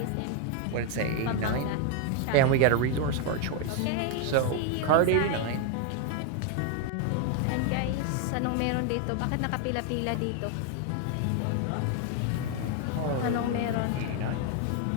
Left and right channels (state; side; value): different; both; correlation 0.01